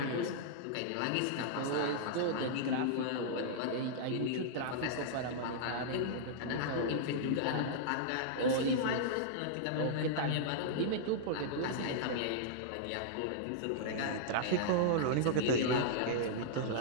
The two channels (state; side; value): different; both; correlation -0.02